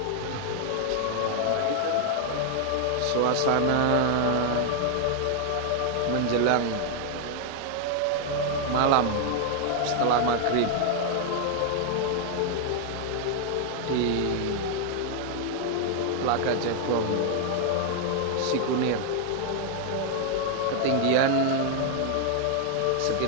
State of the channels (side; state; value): both; different; correlation 0.00